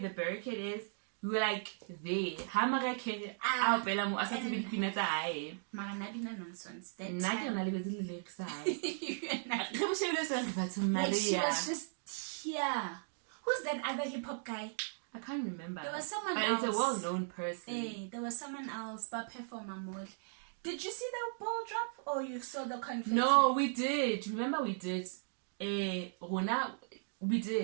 barricade is. We were like there. Nonsense. That she was just here. Who's that other hip hop guy? I can't remember. There was someone but else. It's a well-known person. Hey, there was someone else, but performer mode. Did you see the ball drop or you saw the confetti? No, we did. Remember we did. Rona, we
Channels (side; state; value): left; silent; digital silence